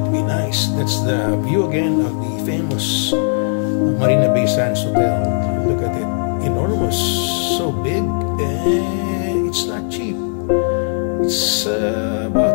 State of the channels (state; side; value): silent; right; digital silence